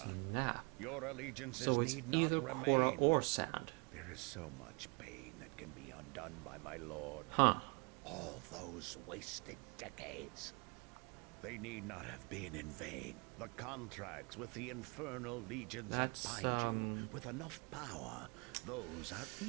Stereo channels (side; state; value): left; quieter; 33.1 dB